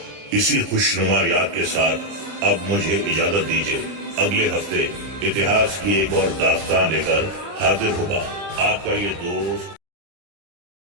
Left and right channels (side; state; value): left; late; 30 ms